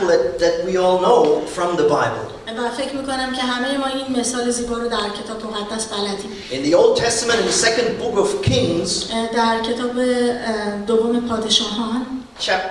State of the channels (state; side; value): identical; both; correlation 1.00